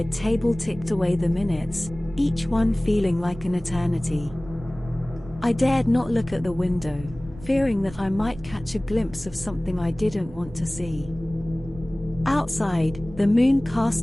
table ticked away the minutes, each one feeling like an eternity. I dared not look at the window, fearing that I might catch a glimpse of something I didn't want to see. Outside, the moon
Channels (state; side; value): noise; right; rumble, 17 dB below the sound